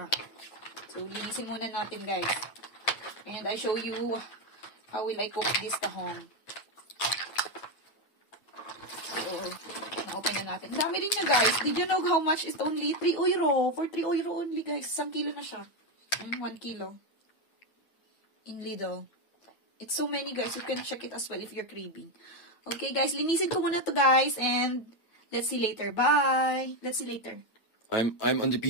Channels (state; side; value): late; right; 9.4 ms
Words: So, linisin muna natin, guys. And I show you how will I cook this tahong. So, na-open na natin. Dami rin niya, guys. Did you know how much is only 3 euro? For 3 euro only, guys. 1 kilo na siya. 1 kilo. In Lidl. It's so many, guys. You can check it as well if you're craving. Okay, guys. Linisin ko muna to, guys. And let's see later. Bye. Let's see later. I'm on the